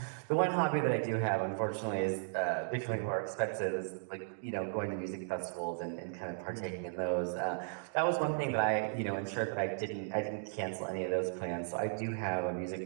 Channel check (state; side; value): silent; left; digital silence